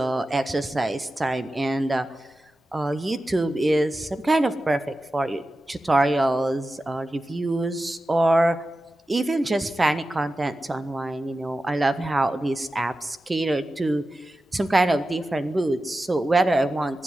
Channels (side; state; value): both; normal; correlation 0.93